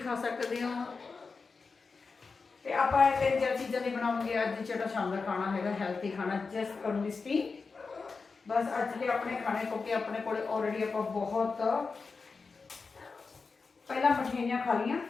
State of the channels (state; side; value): quieter; right; 4.6 dB